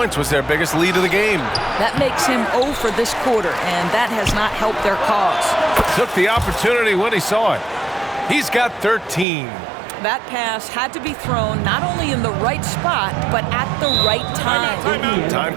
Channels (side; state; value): left; drops out; at 9.2 s